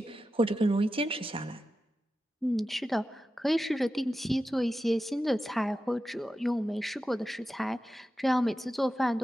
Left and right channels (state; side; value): normal; both; correlation 0.91